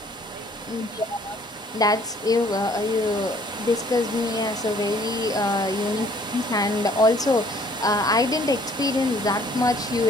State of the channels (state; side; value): normal; both; correlation 0.59